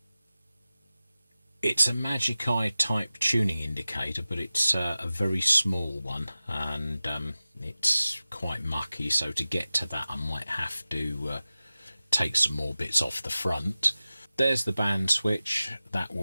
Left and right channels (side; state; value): both; inverted; correlation -0.95